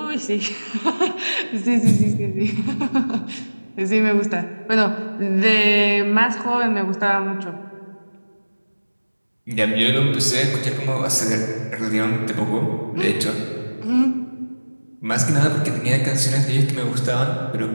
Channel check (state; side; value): inverted; both; correlation -1.00